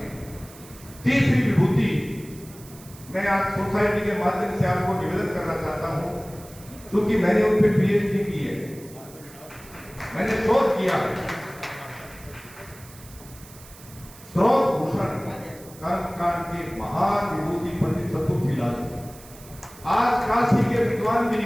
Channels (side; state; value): right; noise; hiss, 20 dB below the sound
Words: हैं। तीसरी विभूति, मैं आज सोसाइटी के माध्यम से आपको निवेदन करना चाहता हूं, क्योंकि मैंने उन पर पीएचडी की है, मैंने शोध किया है। स्रोत भूषण कर्मकांड के महान विभूति पंडित चतुर्थीलाल, आज काशी के विद्वान भी